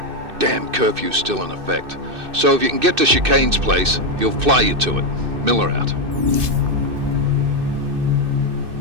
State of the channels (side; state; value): left; late; 2.6 ms